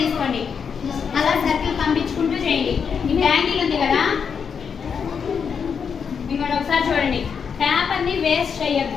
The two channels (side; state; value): right; quieter; 6.5 dB